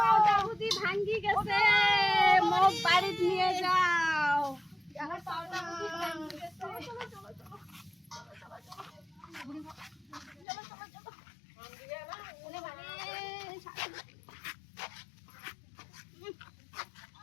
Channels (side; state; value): right; drops out; at 10.5 s